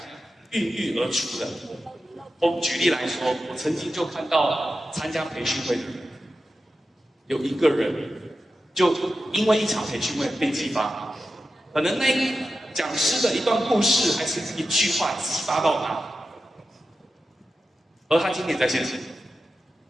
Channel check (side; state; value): both; normal; correlation 0.91